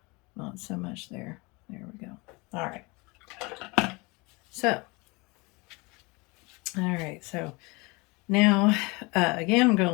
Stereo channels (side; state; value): right; quieter; 26.3 dB